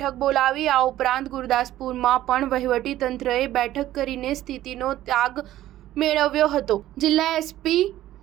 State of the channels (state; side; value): quieter; left; 14.0 dB